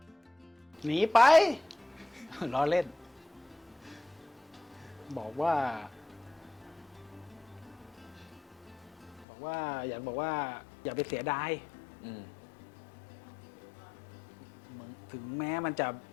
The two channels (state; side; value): drops out; right; at 9.2 s